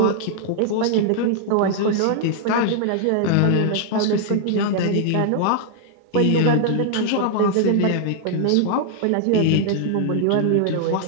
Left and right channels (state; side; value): different; both; correlation 0.00